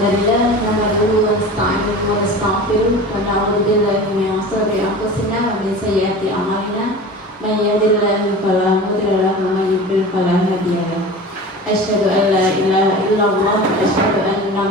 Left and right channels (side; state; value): both; normal; correlation 0.35